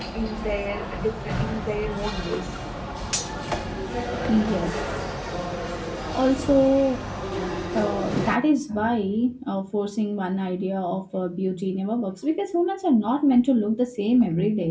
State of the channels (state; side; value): identical; both; correlation 1.00